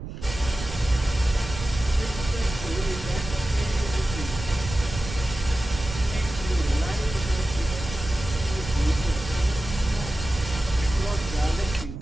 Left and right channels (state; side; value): noise; right; rumble, 9 dB below the sound